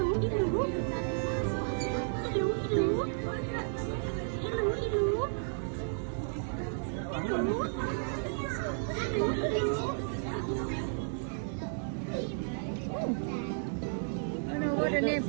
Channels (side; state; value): left; silent; digital silence